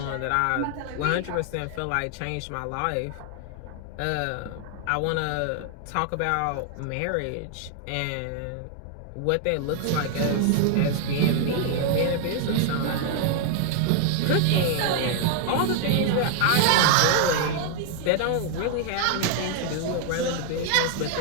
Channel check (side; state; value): both; different; correlation 0.00